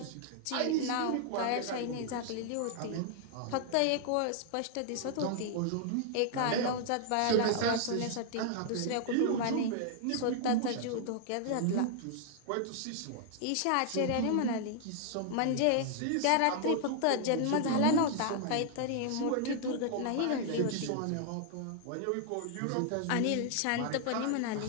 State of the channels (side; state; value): both; different; correlation 0.00